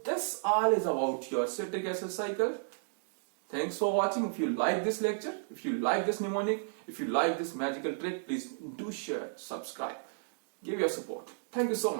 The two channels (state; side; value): silent; left; digital silence